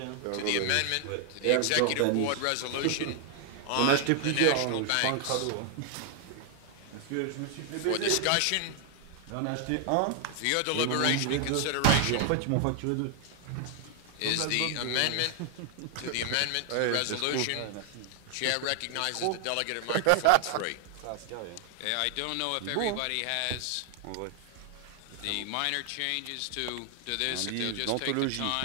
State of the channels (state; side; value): different; both; correlation 0.00